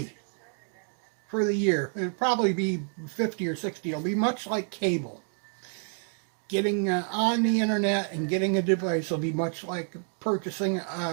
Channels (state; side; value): silent; left; 59 dB below the other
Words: for the year. It'll probably be 50 or 60. It'll be much like cable. Getting on the internet and getting a device will be much like purchasing